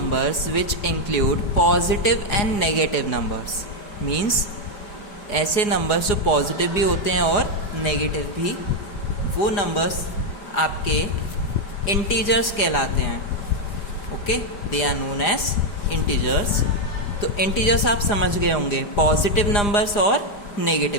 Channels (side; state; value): right; late; 4.9 ms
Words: which include positive and negative numbers. Means ऐसे numbers जो positive भी होते हैं और negative भी, वो numbers आपके integers कहलाते हैं. Okay, they are known as integers. तो इंटीजर्स आप समझ गए होंगे, पॉजिटिव नंबर्स और